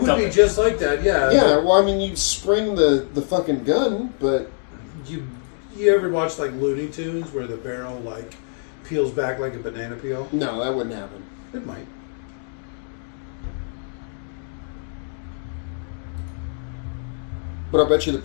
would dump be just like that, yeah. Yeah, well, I mean, you spring the fucking gun, but You ever watch like Looney Tunes where the barrel like peels back like a banana peel? no, that wouldn't happen. It might. But I bet you the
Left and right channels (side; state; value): right; silent; 63 dB below the other